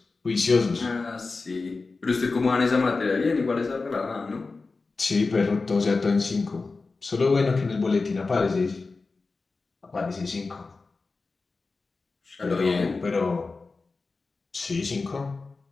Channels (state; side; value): quieter; right; 3.9 dB